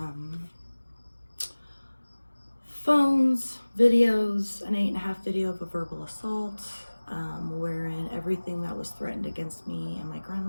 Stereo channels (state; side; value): inverted; both; correlation -1.00